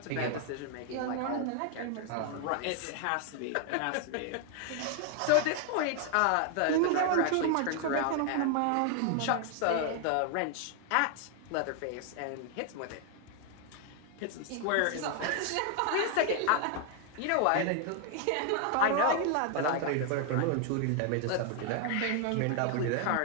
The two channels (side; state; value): both; different; correlation 0.00